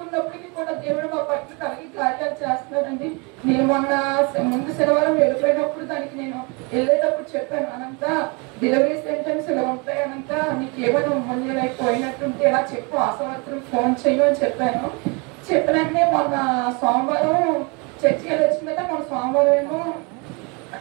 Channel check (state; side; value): quieter; left; 30.8 dB